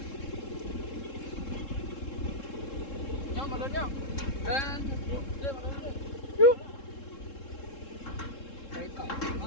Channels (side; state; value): right; late; 3.7 ms